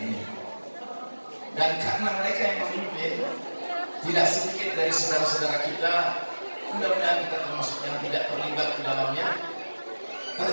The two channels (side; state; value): both; inverted; correlation -1.00